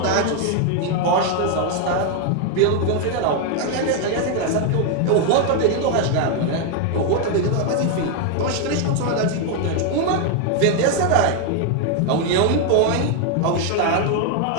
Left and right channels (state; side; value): different; both; correlation 0.01